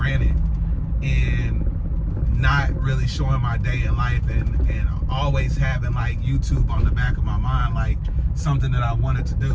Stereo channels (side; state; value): both; identical; correlation 1.00